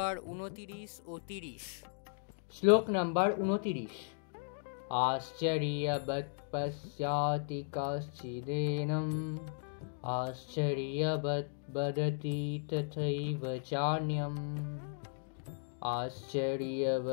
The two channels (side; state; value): right; silent; digital silence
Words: 29 ও 30। শ্লোক নাম্বার 29। আশ্চর্যবৎ পশ্যাতি কশ্চিদেনম আশ্চর্যবৎ বদতি তথৈব চান্যম